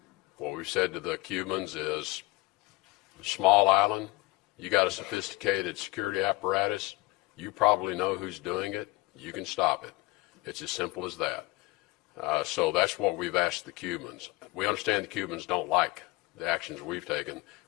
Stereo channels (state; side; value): quieter; right; 21.6 dB